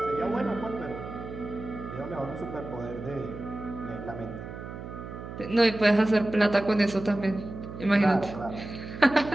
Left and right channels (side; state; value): right; noise; hum, 10 dB below the sound